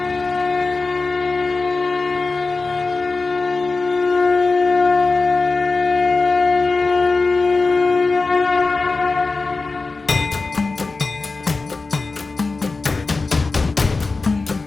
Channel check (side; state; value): right; quieter; 3.8 dB